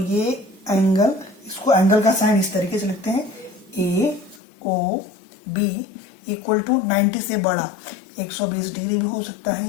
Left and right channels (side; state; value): right; drops out; at 4.4 s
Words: एंगल, इसको एंगल का साइन इस तरीके से लिखते हैं, ए ओ बी इक्वल टू 90 से बड़ा 120 डिग्री भी हो सकता